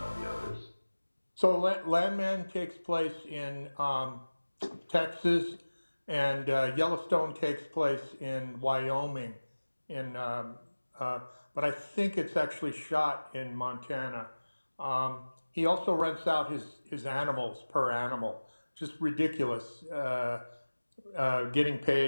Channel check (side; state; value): both; inverted; correlation -1.00